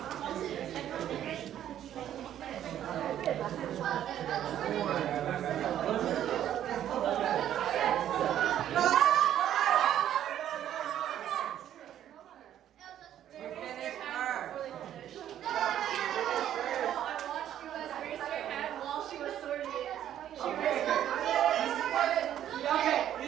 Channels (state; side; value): quieter; left; 11.0 dB